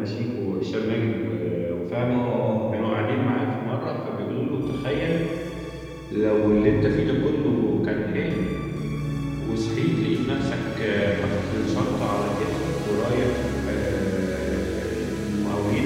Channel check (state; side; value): identical; both; correlation 1.00